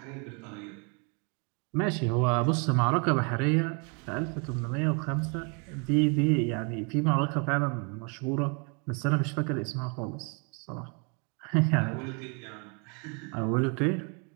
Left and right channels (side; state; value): left; quieter; 35.7 dB